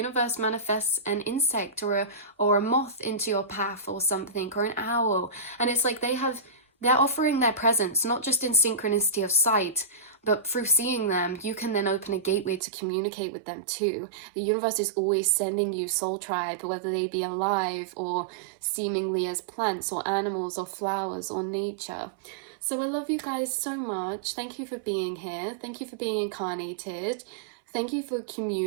manifests an insect or a moth into your path or something, or an owl, and it's like they're offering their presence, not just in synchronicity of sight, but through seeing them, you can then open a gateway to communicate with them too. The universe is always sending you soul tribe, whether they be alive or seemingly as plants or animals or flowers or nature. So I love you guys so much. Thank you for being here. Thank you for being incarnated. Thank you for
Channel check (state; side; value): drops out; left; at 12.6 s